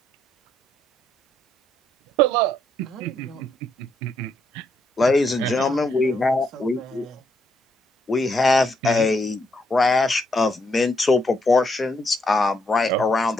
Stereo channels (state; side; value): normal; both; correlation 0.75